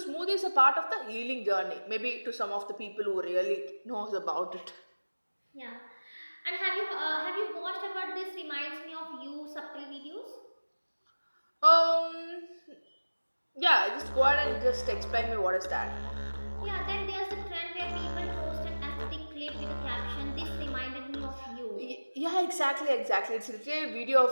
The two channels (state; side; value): inverted; both; correlation -1.00